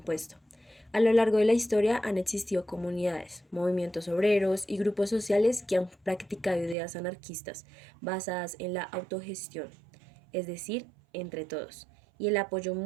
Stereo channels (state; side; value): drops out; left; at 6.8 s